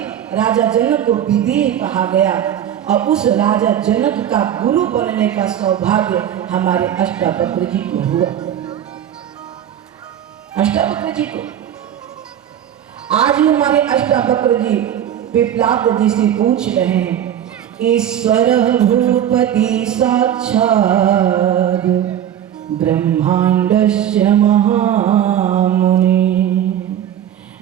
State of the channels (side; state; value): left; quieter; 10.3 dB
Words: राजा जनक को विदेह कहा गया। और उस राजा जनक का गुरु बनने का सौभाग्य हमारे अष्टावक्र जी को हुआ। अष्टावक्र जी को आज हमारे अष्टावक्र जी पिपलाद जी से पूछ रहे हैं, ईश्वर भूपति साक्षात् ब्रह्मांडस्य महामुनि